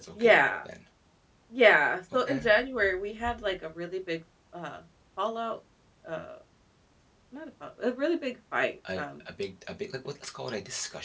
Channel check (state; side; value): identical; both; correlation 1.00